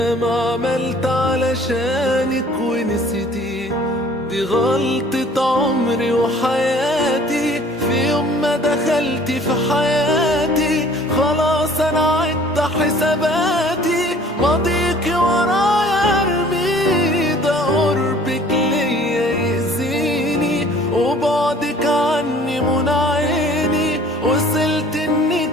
عملت علشانك ونسيتيه. دي غلطة عمري وحياتي، في يوم ما دخلتي في حياتي خلاص انا عدت حساباتي. ماضيكي ورايا ارمي، ده قربك ليا يأذيني وبعدك عني منى عيني. وصلت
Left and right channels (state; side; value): normal; both; correlation 0.52